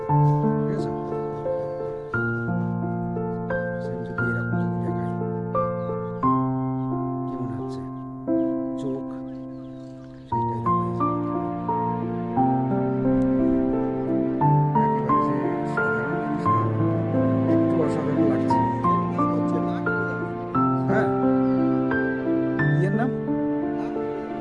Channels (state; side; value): identical; both; correlation 1.00